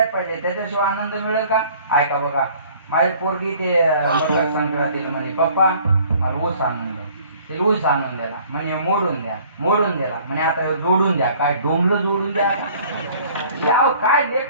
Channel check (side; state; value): both; inverted; correlation -0.54